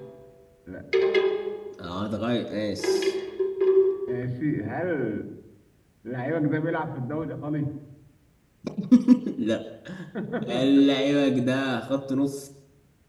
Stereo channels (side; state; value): both; identical; correlation 1.00